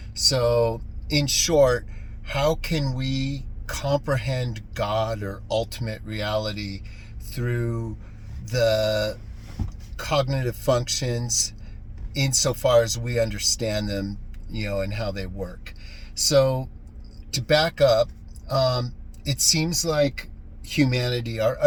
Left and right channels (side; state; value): both; identical; correlation 1.00